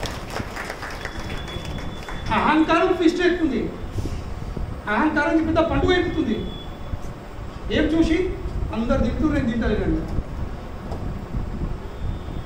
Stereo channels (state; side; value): identical; both; correlation 1.00